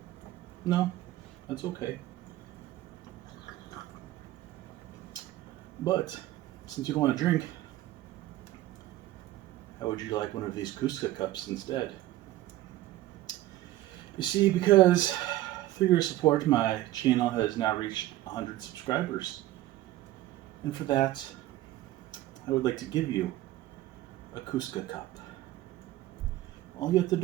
No? That's okay. But, since you don't want to drink, how would you like one of these Kuksa cups instead? You see, because through your support, my channel has now reached 100 subscribers. And for that, I would like to give you a Kuksa cup. All you have to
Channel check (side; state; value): left; quieter; 15.3 dB